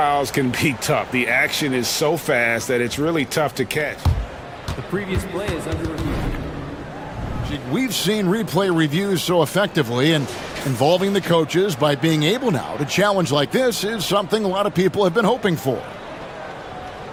can be tough. The action is so fast that it's really tough to catch. The previous play is under review. We've seen replay reviews so effectively, and involving the coaches by being able now to challenge like this is something a lot of people have been hoping for.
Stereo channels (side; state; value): both; identical; correlation 1.00